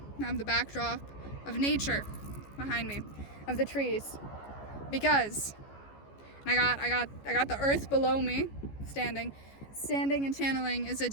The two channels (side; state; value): right; late; 14 ms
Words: have the backdrop of nature behind me, of the trees, because I got the earth below me, standing and channeling is a